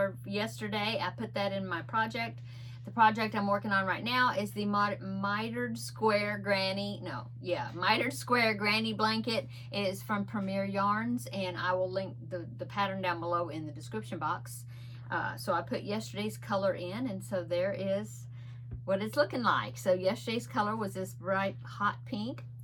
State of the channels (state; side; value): identical; both; correlation 1.00